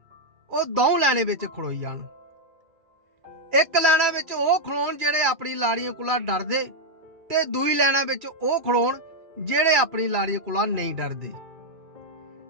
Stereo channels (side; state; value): left; late; 2.4 ms